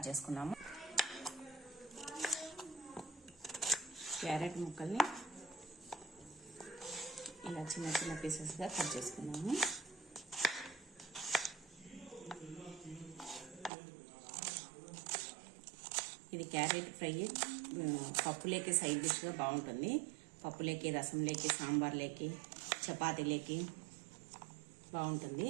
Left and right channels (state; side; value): drops out; left; at 13.7 s